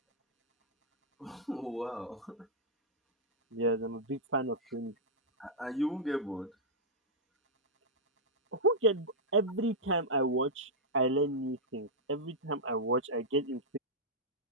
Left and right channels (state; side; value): normal; both; correlation -0.07